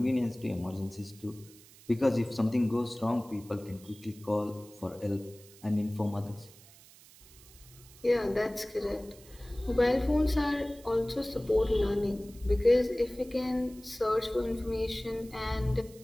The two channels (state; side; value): noise; right; hiss, 23 dB below the sound